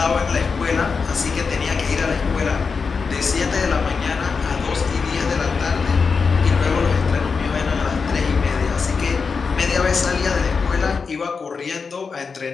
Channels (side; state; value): right; quieter; 5.2 dB